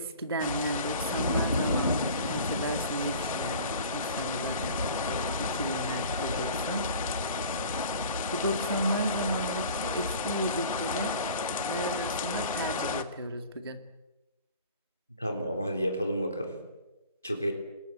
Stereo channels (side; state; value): both; inverted; correlation -0.44